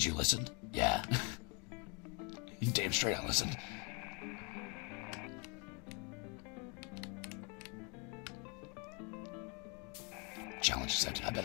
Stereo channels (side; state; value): right; quieter; 34.1 dB